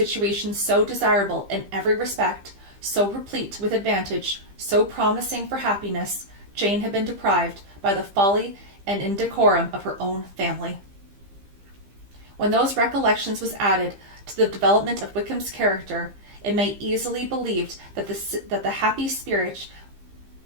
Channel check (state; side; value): late; left; 15 ms